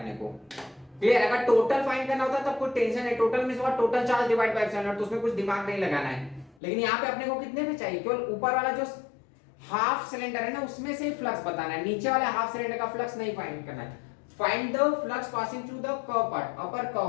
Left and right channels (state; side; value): drops out; right; at 6.6 s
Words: को। क्लियर, अगर टोटल फाइंड करना होता तब कोई टेंशन है, टोटल में से total charge divide by epsilon naught, तो उसमें कुछ दिमाग नहीं लगाना है, लेकिन यहाँ पे अपने को कितने पे चाहिए, केवल ऊपर वाला जो हाफ सिलेंडर है ना उसमें से ही फ्लक्स बताना है, नीचे वाले हाफ सिलेंडर का फ्लक्स नहीं फाइंड करना है। Find the flux passing through the curve part, upper